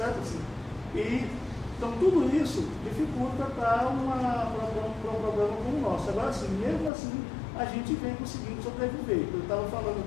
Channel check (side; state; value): right; drops out; at 6.9 s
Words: assim? Então tudo isso dificulta para um programa como o nosso. Agora assim, mesmo assim, a gente vem conseguindo sobreviver. Eu estava falando